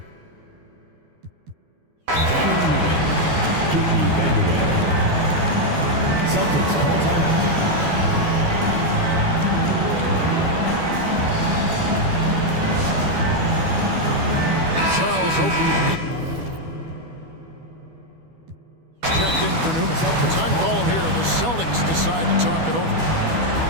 Kiki Vanderway. Celtics call timeout. Charles Oakley. Checked in for Newman. Time called here. The Celtics decide to talk it over.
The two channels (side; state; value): left; late; 12 ms